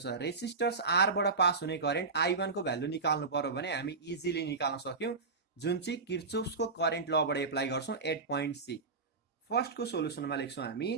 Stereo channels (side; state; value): left; quieter; 4.2 dB